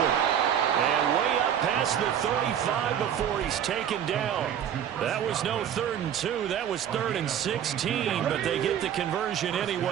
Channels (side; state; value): left; quieter; 9.4 dB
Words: And way up past the 35 before he's taken down. That was no 3rd and 2. That was 3rd and 16, but they get the conversion